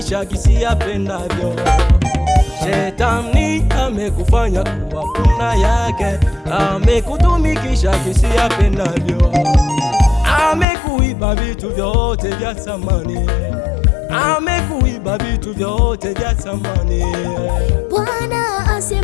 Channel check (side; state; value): right; drops out; at 10.7 s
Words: kisi apendavyo. Shetani amekufanya kuwa punda yake, amekutumikisha kisi apendavyo. Amekuiba vitu vyote vya thamani, amekuiba vitu vyote vya thamani. Bwana